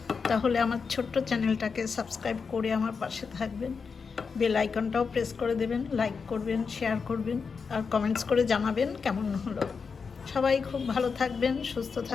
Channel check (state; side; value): quieter; right; 5.4 dB